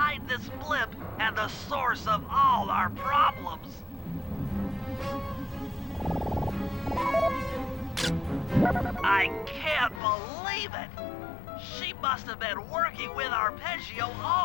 this blimp and the source of all our problems. I can't believe it! She must have been working with Arpeggio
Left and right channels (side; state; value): right; drops out; at 10.0 s